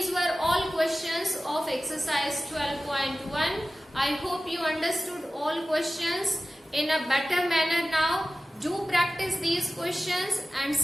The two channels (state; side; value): normal; both; correlation 0.95